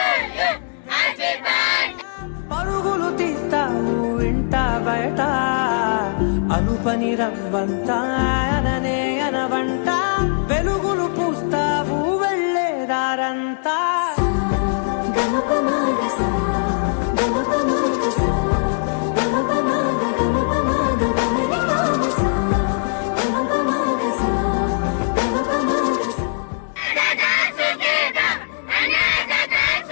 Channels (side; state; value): right; silent; digital silence